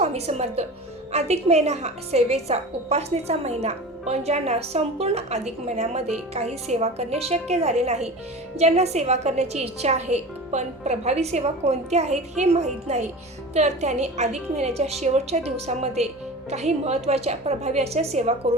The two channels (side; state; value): both; normal; correlation 0.34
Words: समर्थ. अधिक महिना हा सेवेचा, उपासनेचा महिना. पण ज्यांना संपूर्ण अधिक महिन्यामध्ये काही सेवा करणे शक्य झाले नाही, ज्यांना सेवा करण्याची इच्छा आहे पण प्रभावी सेवा कोणत्या आहेत हे माहीत नाही, तर त्यांनी अधिक महिन्याच्या शेवटच्या दिवसामध्ये काही महत्त्वाच्या प्रभावी अशा सेवा